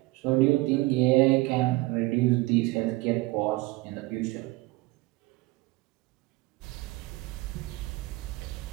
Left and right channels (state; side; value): quieter; left; 21.1 dB